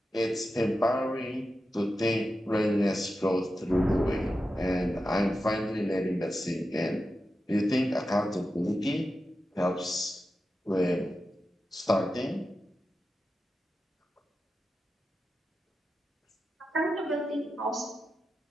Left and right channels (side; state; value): both; normal; correlation 0.91